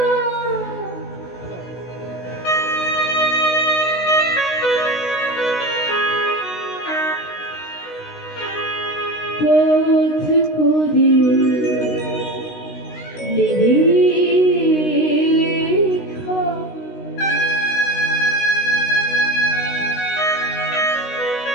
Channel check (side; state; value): right; late; 16 ms